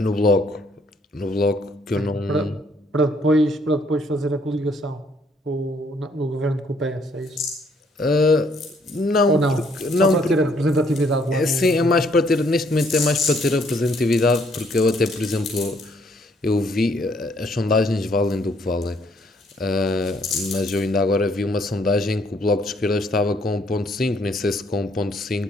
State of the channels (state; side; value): normal; both; correlation 0.67